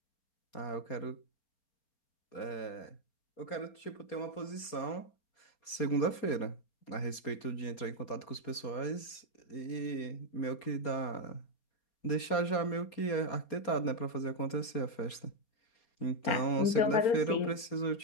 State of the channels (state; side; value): late; right; 4.3 ms